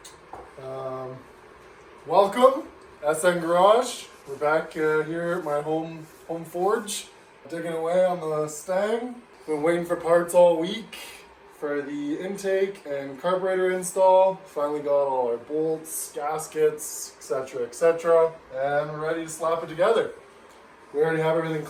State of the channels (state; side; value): identical; both; correlation 1.00